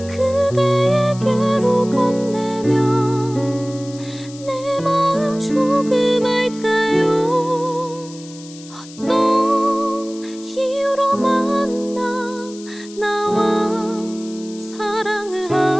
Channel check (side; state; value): left; noise; hiss, 19 dB below the sound